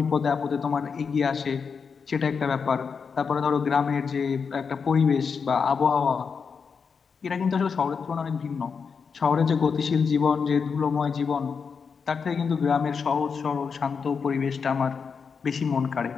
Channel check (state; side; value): quieter; right; 5.8 dB